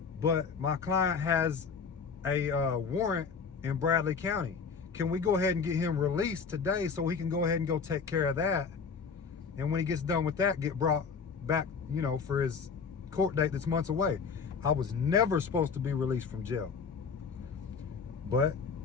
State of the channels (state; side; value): quieter; right; 5.6 dB